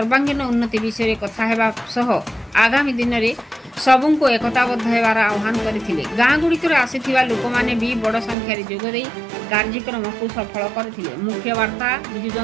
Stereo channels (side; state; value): left; drops out; at 8.3 s